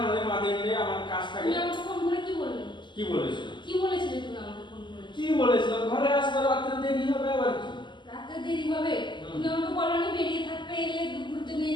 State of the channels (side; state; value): right; late; 0.22 ms